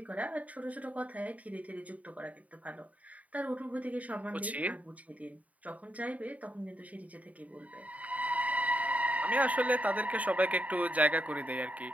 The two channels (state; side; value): late; left; 0.070 ms